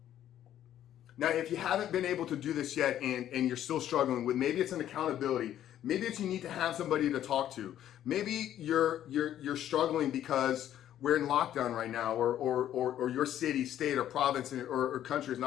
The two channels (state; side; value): quieter; right; 11.4 dB